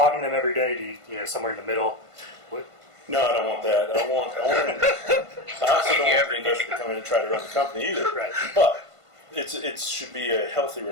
them every day? Do you, somewhere in the middle? No, I don't want that. I also don't want the investor to come in and try to run the company either. Right. But it should be a healthy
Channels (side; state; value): left; late; 1.5 ms